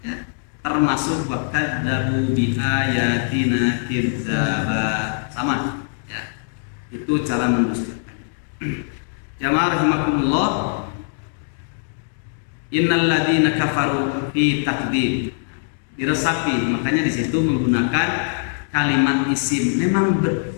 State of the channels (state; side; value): silent; right; digital silence